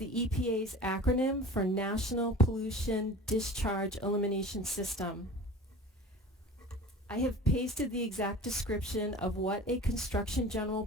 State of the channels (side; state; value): both; normal; correlation 0.39